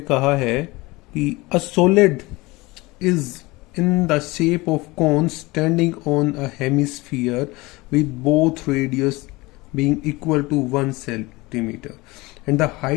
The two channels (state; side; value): quieter; right; 22.4 dB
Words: कहा है कि a solid is in the shape of cone standing on a hemisphere with both radius being equal to 1 centimeter and the